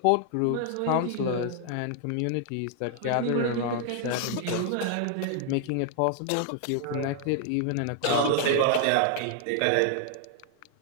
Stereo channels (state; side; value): different; both; correlation 0.00